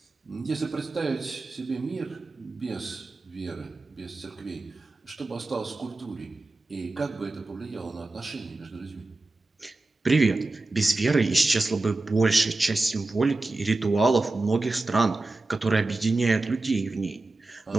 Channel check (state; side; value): quieter; left; 3.2 dB